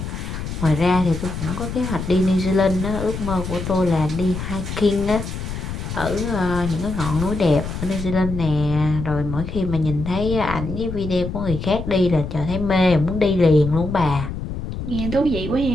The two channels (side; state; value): left; noise; rumble, 6 dB below the sound